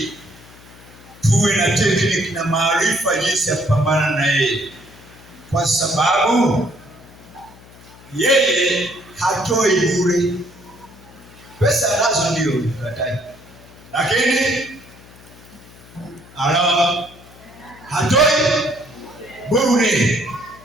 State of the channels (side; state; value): left; noise; hum, 22 dB below the sound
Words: tuwe na tekniki na maarifa jinsi ya kupambana na yeye, kwa sababu yeye hatoi bure. Pesa nazo ndio katai, lakini hatoi bure.